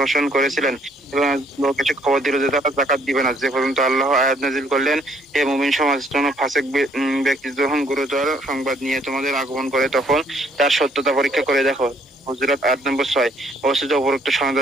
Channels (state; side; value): normal; both; correlation 0.65